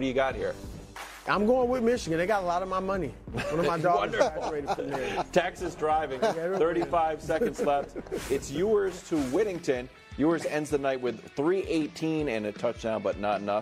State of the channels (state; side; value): identical; both; correlation 1.00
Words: you got here? I'm going with Michigan. They got a lot of my money. One of my daughters graduated from there. Texas driving. 35 seconds left. It's Ewers to Whittington. Ewers ends the night with 318 and a touchdown, but not